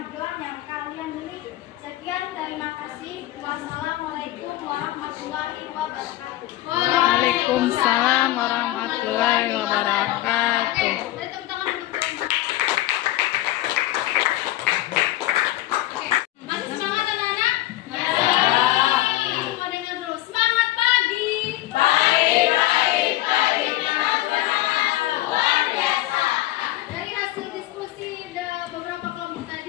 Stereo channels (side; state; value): right; quieter; 16.0 dB